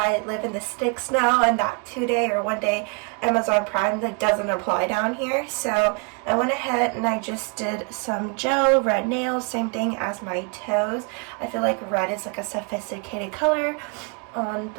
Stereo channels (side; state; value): left; quieter; 34.0 dB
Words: live in the sticks now, and that 2-day or 1-day Amazon Prime that doesn't apply down here. So I went ahead and I just did some gel, red nails, same thing as my toes. I feel like red is like a sophisticated color on